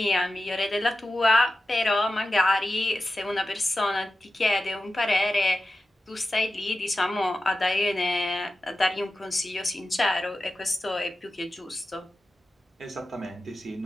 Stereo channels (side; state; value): both; normal; correlation 0.92